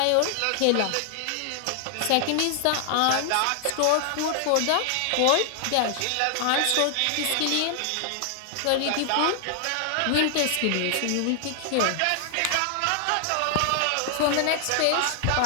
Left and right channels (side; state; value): both; different; correlation 0.00